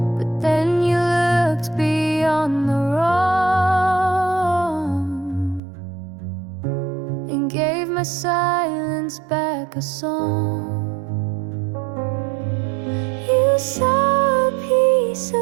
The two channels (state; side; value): drops out; left; at 5.6 s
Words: But then you looked beyond the wrong and gave my silence back a song. You saw a piece